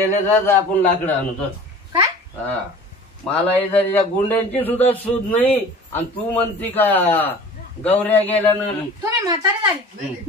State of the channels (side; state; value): both; normal; correlation 0.42